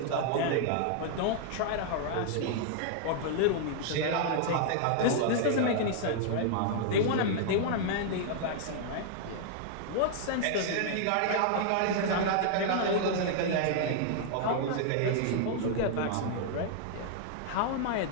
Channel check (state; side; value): different; both; correlation -0.01